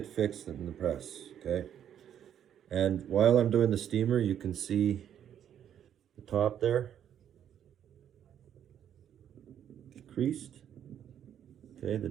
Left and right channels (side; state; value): left; quieter; 9.7 dB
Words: fixed in the press, okay? And while I'm doing the steamer, you can see the top there, creased. Okay, the